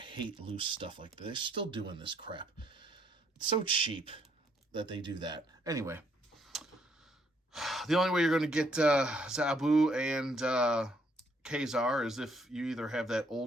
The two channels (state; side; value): normal; both; correlation 0.69